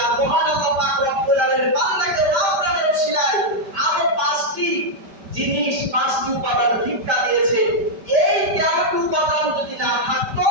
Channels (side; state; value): left; late; 5.1 ms